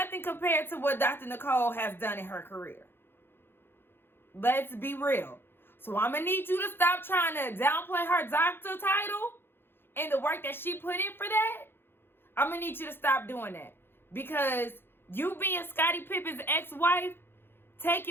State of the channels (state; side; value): late; right; 0.10 ms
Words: compared to what Dr. Nicole has done in her career. Let's be real. So I'm going to need you to stop trying to downplay her doctor title and the work that she put in for that. I'm going to need you to stop doing that. Because you being Scottie Pippen's ex-wife,